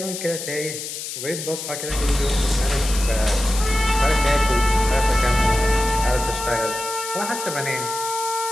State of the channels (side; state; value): left; noise; hiss, 7 dB below the sound